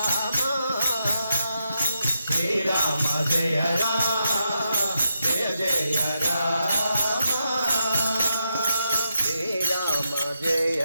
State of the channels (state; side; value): inverted; both; correlation -0.84